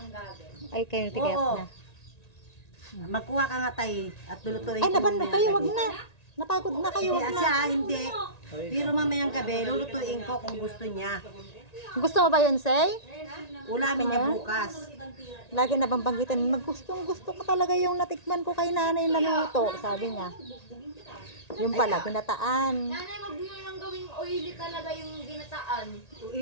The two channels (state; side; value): late; right; 1.9 ms